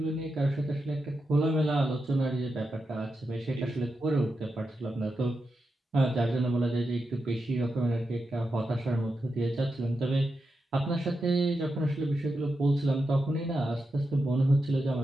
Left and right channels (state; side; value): normal; both; correlation 0.87